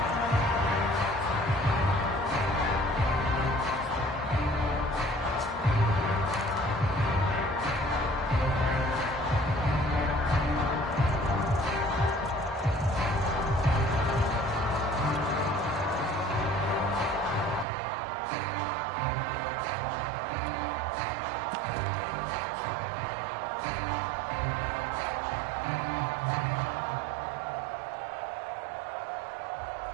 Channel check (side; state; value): left; drops out; at 17.7 s